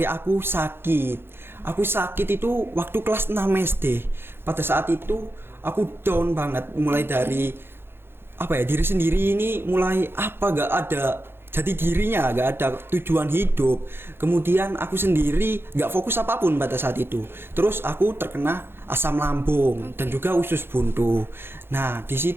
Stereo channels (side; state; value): left; late; 0.11 ms